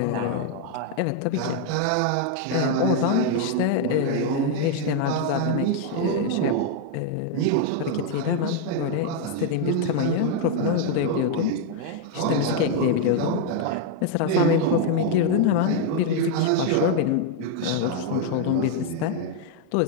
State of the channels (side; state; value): both; different; correlation 0.00